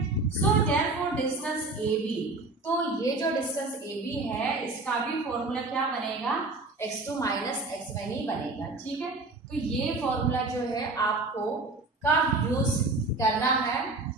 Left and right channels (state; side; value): quieter; left; 3.3 dB